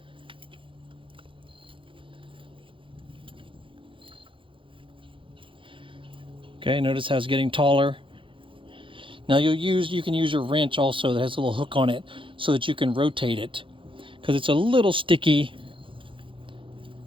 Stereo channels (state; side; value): late; left; 0.25 ms